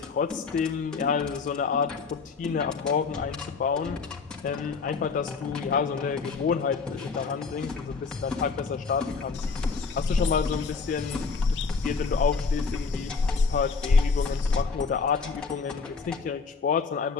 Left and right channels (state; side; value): quieter; right; 4.9 dB